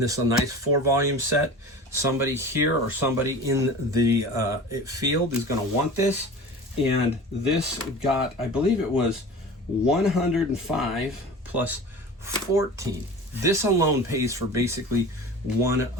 this is a nice 4-volume set. Somebody here or somebody in the field is going to want this. And this got, I believe it was 105 plus 14. This alone pays for basically one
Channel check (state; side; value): normal; both; correlation 0.37